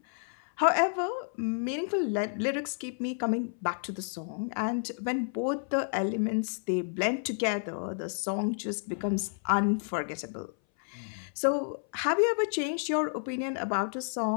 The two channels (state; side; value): silent; right; 57 dB below the other